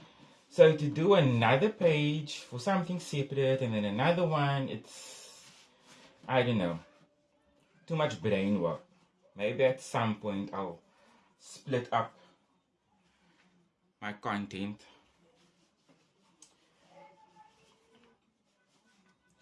So to do another page for something separate and then another one, it's, I don't know, too much brain work. Maybe at some point I'll split up my content.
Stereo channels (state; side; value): identical; both; correlation 1.00